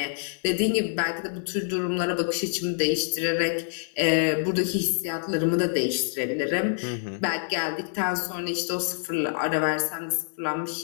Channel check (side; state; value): right; silent; digital silence